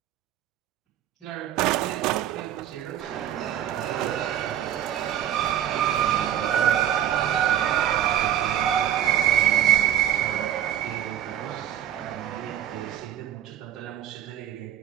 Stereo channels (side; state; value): left; quieter; 11.0 dB